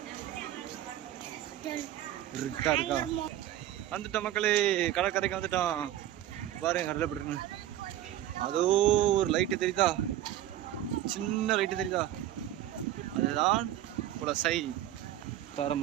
இருட்டா இருக்கா. வந்துட்டோம் மக்களே, கடற்கரைக்கு வந்துட்டோம். பாருங்க கடலை போட்டுருங்க. அதோ ஒரு லைட்டு தெரியுதா, சின்ன லைட்டு தெரியுதா, அதுதான் குலசை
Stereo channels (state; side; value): quieter; left; 12.8 dB